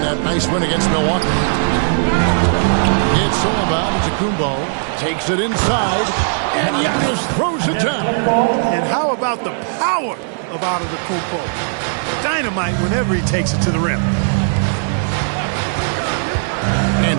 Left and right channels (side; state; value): left; silent; 66 dB below the other